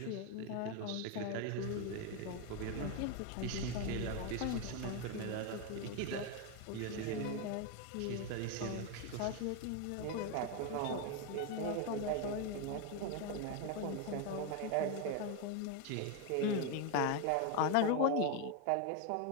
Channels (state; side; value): different; both; correlation 0.01